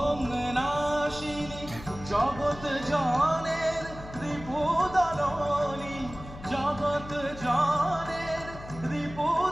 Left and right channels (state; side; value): noise; left; hum, 14 dB below the sound